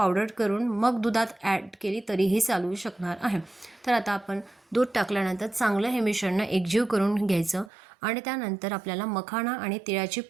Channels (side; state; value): left; drops out; at 7.7 s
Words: करून मग दुधात ॲड केली तरीही चालू शकणार आहे। तर आता आपण दूध टाकल्यानंतर चांगलं हे मिश्रण एकजीव करून घ्यायचं आणि त्यानंतर आपल्याला मखाणा आणि तिळाची